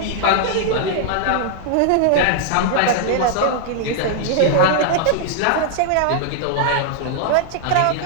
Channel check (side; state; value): both; different; correlation 0.00